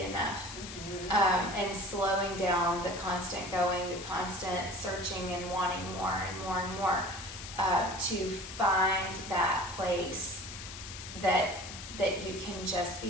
enough. And slowing down the constant going, the constant searching and wanting more and more and more, to find that place that you can just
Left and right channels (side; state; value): left; noise; hiss, 10 dB below the sound